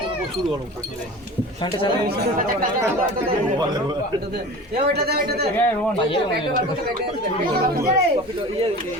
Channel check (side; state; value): both; normal; correlation 0.37